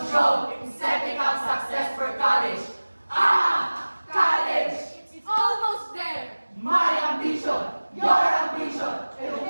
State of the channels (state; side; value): inverted; both; correlation -1.00